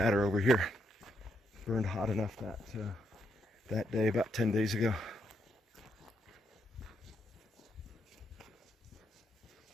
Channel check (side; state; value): both; normal; correlation 0.78